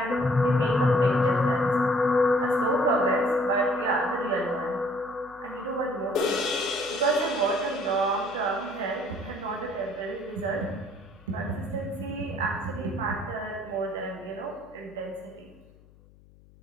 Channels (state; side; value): noise; left; hum, 26 dB below the sound